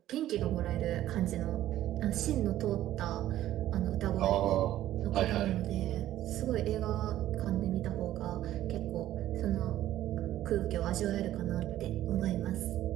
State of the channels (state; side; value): quieter; left; 13.4 dB